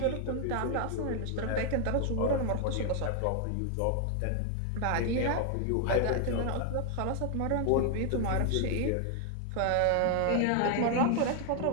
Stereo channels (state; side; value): different; both; correlation 0.00